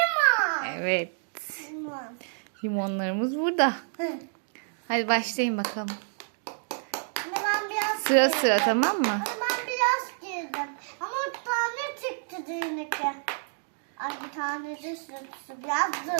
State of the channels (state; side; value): silent; left; digital silence